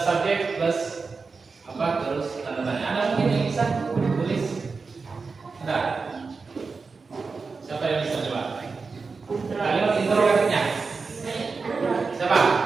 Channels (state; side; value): quieter; left; 4.5 dB